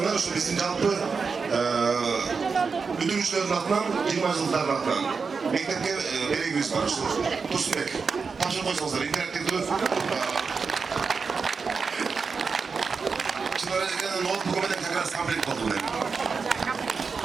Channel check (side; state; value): left; quieter; 5.1 dB